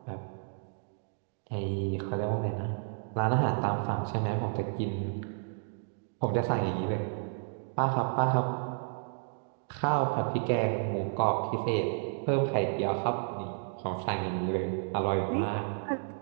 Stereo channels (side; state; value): left; silent; digital silence